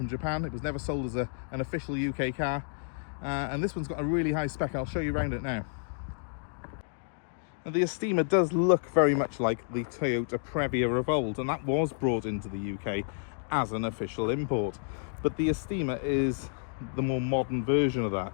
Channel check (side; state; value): right; silent; digital silence